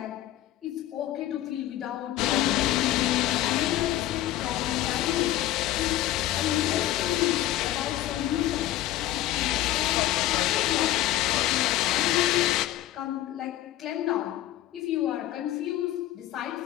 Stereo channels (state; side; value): quieter; right; 14.4 dB